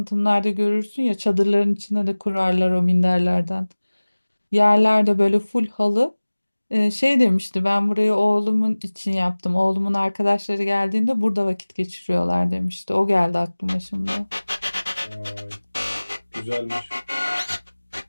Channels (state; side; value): inverted; both; correlation -1.00